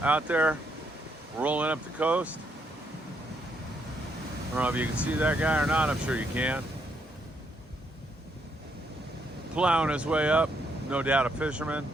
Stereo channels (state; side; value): normal; both; correlation 0.75